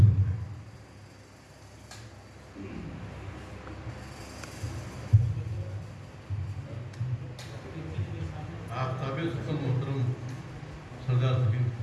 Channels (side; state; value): both; identical; correlation 1.00